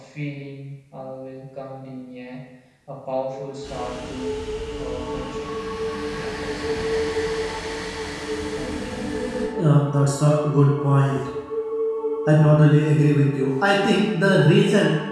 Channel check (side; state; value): both; identical; correlation 1.00